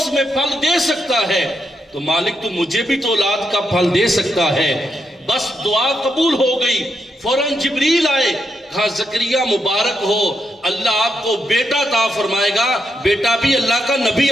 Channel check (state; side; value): normal; both; correlation 0.83